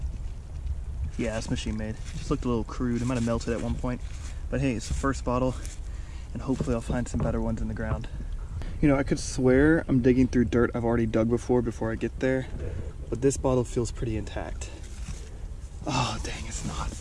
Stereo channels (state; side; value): identical; both; correlation 1.00